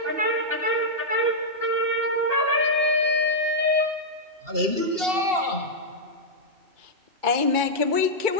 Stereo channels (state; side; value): late; left; 2.7 ms